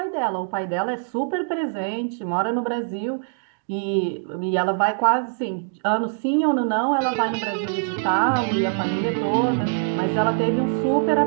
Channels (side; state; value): left; silent; digital silence